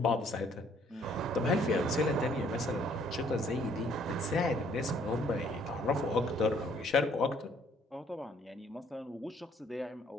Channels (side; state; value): both; normal; correlation 0.62